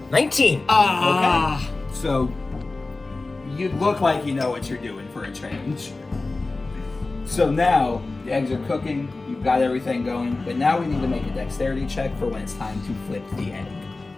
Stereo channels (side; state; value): right; quieter; 3.4 dB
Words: 19. Ah. So, you look like you know what you're doing for a change. So now, The eggs are cooking. You've got everything going. But now we need to make a dexterity check for when it's time to flip the